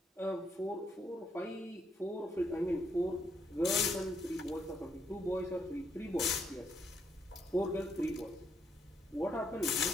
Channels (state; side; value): normal; both; correlation 0.75